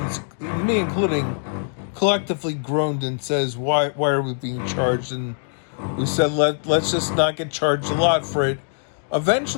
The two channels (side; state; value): right; silent; digital silence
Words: me including, collectively groaned and says, why are we being charged? And we said, let's just not get charged a lot for it.